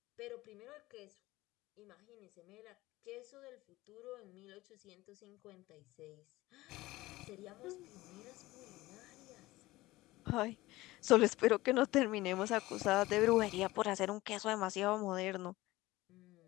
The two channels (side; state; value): right; quieter; 18.7 dB